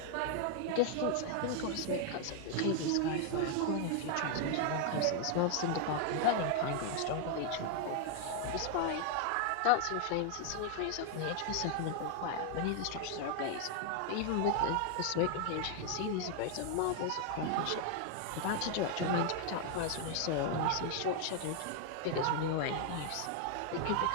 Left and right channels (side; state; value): both; different; correlation 0.00